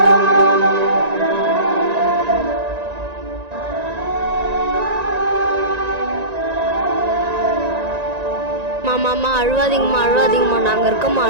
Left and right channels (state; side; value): late; left; 1.9 ms